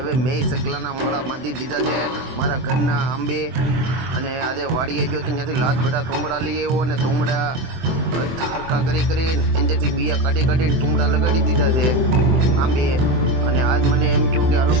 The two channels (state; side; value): late; left; 23 ms